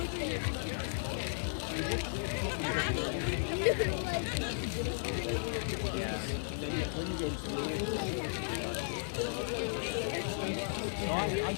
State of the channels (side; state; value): right; silent; digital silence